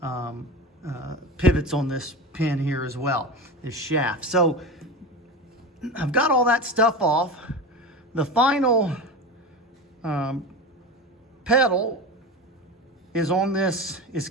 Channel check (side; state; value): both; normal; correlation 0.27